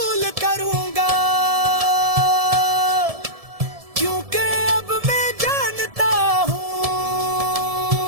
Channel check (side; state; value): left; late; 1.7 ms